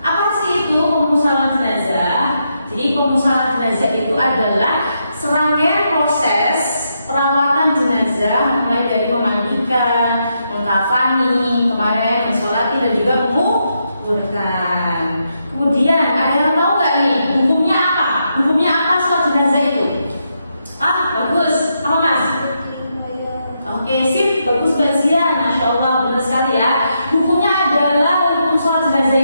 Apa sih itu pemusalan jenazah? Jadi pemusalan jenazah itu adalah serangkaian proses perawatan jenazah, mulai dari memandikan, mengkafani, kemarin mensolati dan juga menguburkan. Kemudian ada yang tahu nggak nih hukumnya apa? Hukumnya apa sholat jenazah itu? Bagus. Apa Mas? Oke, sip, bagus kajian, masya Allah, benar sekali ya. Hukumnya adalah hukum sholat jenazah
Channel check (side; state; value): both; inverted; correlation -0.81